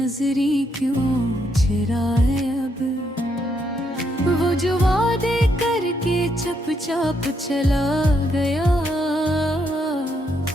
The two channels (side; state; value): both; normal; correlation 0.76